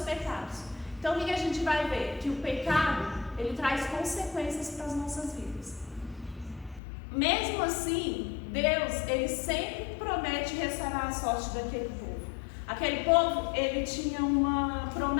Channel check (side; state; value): right; drops out; at 6.8 s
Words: Então o que a gente vai ver? Que o pecado, ele traz consequências para as nossas vidas. Mesmo assim, Deus, ele sempre promete restaurar a sorte daquele povo. Aquele povo, ele tinha uma